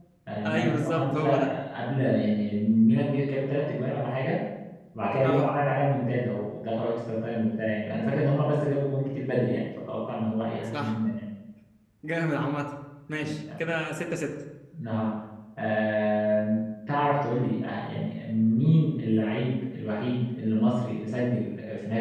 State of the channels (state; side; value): identical; both; correlation 1.00